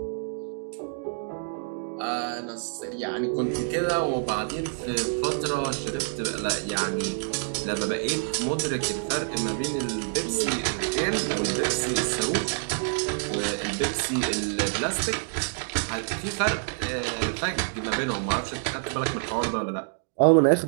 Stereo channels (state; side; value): silent; left; digital silence